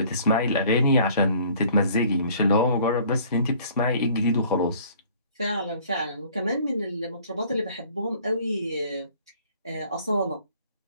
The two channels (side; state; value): both; inverted; correlation -0.55